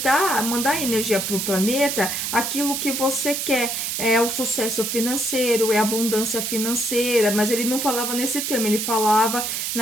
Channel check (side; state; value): right; noise; hiss, 2 dB below the sound